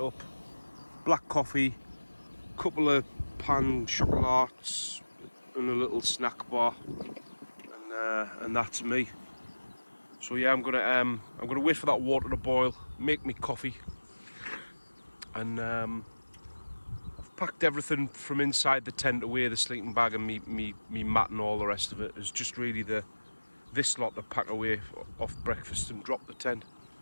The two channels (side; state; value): both; inverted; correlation -1.00